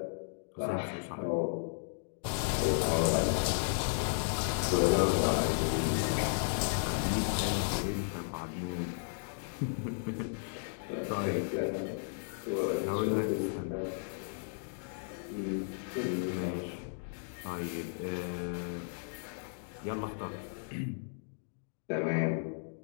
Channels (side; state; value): right; silent; digital silence